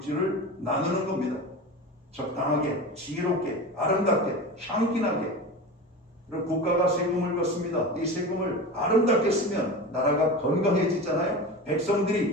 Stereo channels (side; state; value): both; normal; correlation 0.29